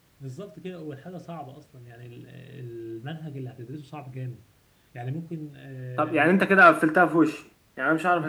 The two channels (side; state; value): both; identical; correlation 1.00